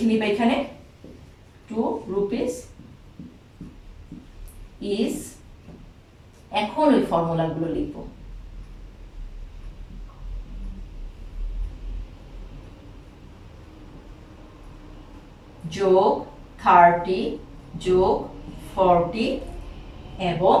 নিবে এখানে, 2 rupees is, এখন ওই ফর্মুলাগুলো লিখব। যোগ 30 যোগ 40 এবং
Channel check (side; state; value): both; identical; correlation 1.00